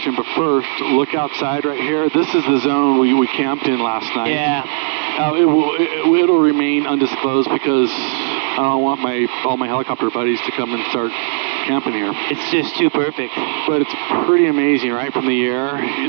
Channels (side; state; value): left; silent; digital silence